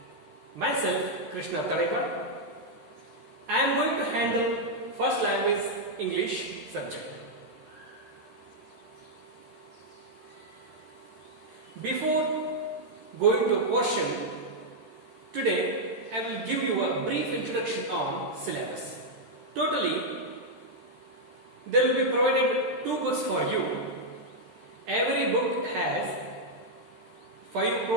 Myself, Krishna Talekar. I am going to handle first language English subject. Before going to portion, today I will give you a brief introduction on syllabus. Totally, there will be provided 2 books for you. Every book has 5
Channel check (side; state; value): left; late; 13 ms